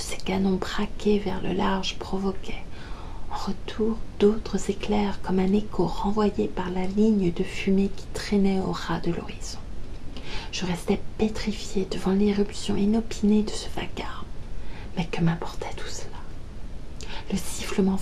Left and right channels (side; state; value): both; identical; correlation 1.00